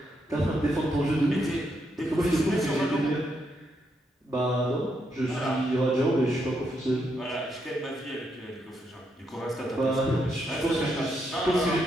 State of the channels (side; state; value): both; normal; correlation 0.79